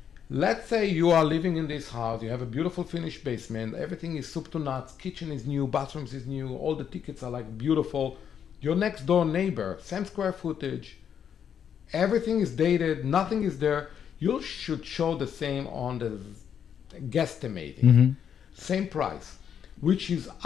Let's say you are living in this house, you have a beautiful finished basement, everything is soup to nuts, kitchen is new, bathrooms is new, all the tickets are like beautiful. Your next door neighbor, same square footage, everything is dated, nothing is there. You should show the same on the guesstimating. Same price, which is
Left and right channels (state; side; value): quieter; right; 8.3 dB